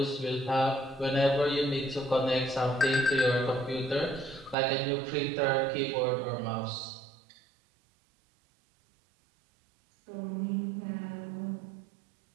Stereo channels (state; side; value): drops out; left; at 4.5 s